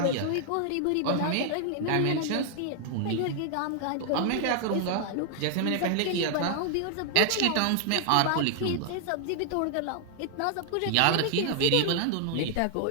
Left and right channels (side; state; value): both; different; correlation 0.00